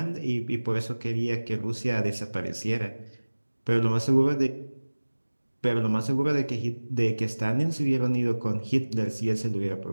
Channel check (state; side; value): inverted; both; correlation -1.00